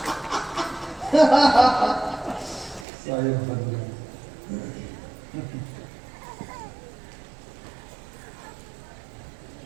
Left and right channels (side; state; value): left; drops out; at 2.9 s